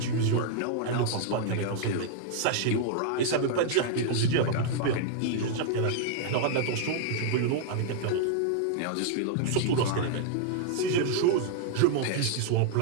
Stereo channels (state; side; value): different; both; correlation 0.00